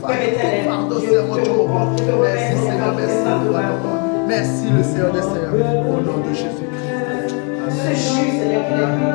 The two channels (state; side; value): quieter; right; 35.3 dB